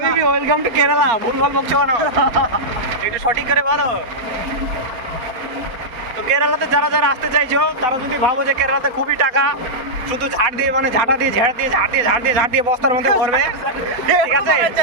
ওয়েলকাম টু কেরালা। ভুলভাল বকছো কেন? একটু সঠিক করে বলো। তো কেরালাতে যারা আসতে চাইছো, তারা যদি ভাবো যে কেরালাতে খুবই টাকা, শুধু ঝাড় দিয়ে বস্তার মধ্যে ভরবে, ঠিক আছে?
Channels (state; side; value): late; left; 4.3 ms